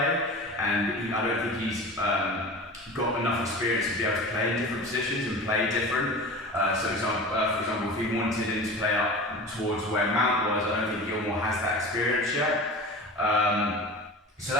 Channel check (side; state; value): both; normal; correlation 0.35